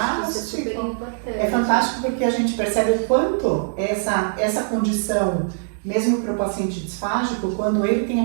que isso é super importante. É fantástico porque a gente percebe o quanto essa condição, mesmo para o paciente disfágico, quando ele tem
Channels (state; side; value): silent; left; digital silence